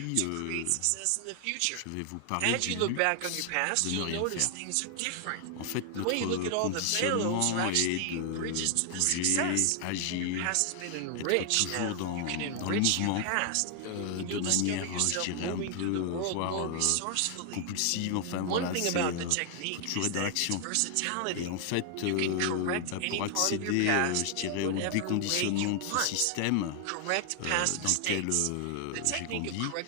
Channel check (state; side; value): different; both; correlation 0.00